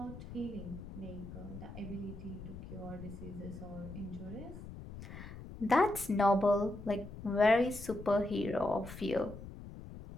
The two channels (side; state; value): left; noise; rumble, 12 dB below the sound